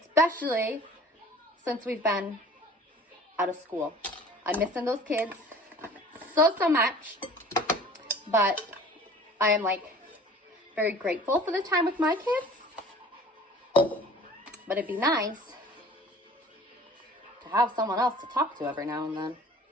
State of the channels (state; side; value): normal; both; correlation 0.46